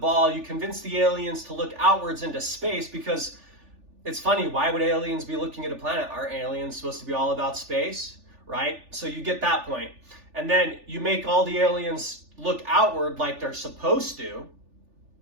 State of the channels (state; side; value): late; left; 3.4 ms